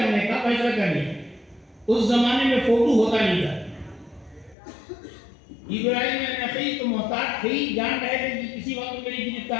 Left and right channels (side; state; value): right; drops out; at 4.5 s